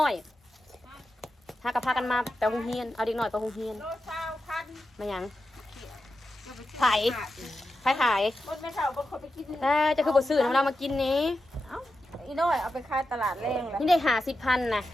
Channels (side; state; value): both; normal; correlation 0.90